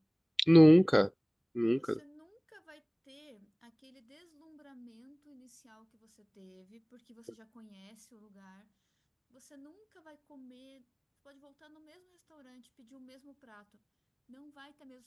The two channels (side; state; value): both; identical; correlation 1.00